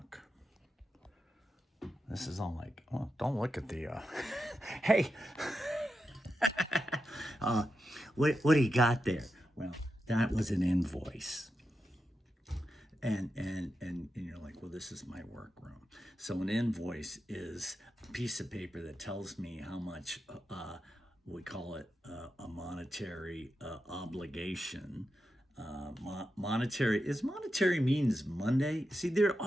this is all like, oh, don't look at the, hey, what do you got there? Well, that was an invoice. And you're like, well, this is my workroom. So an invoice is a piece of paper that tells me how much we call it a monetary obligation. Monetary means Monday. See, there are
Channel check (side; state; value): both; normal; correlation 0.88